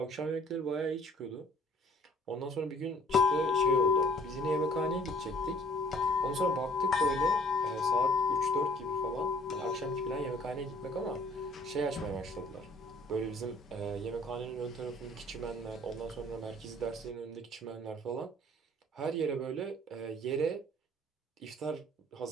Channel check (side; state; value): both; normal; correlation 0.56